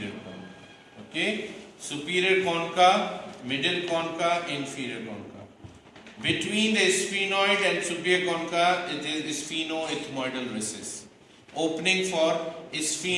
concha. Okay, superior concha, middle concha, inferior concha. Between the sphenoid and superior concha, it is sphenoethmoidal recess. Opening for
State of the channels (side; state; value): both; identical; correlation 1.00